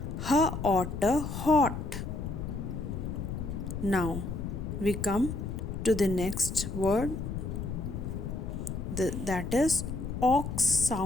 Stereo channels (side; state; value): left; noise; rumble, 5 dB below the sound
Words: otter hot. Now we come to the next word, that is ox